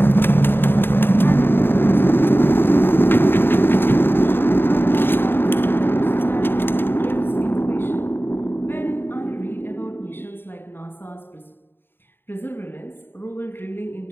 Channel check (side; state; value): right; late; 0.10 ms